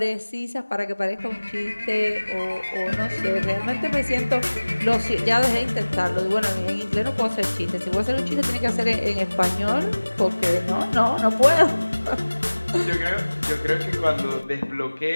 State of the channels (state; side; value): inverted; both; correlation -1.00